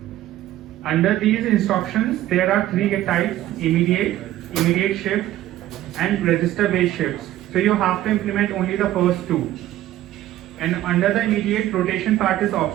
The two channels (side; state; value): left; quieter; 14.1 dB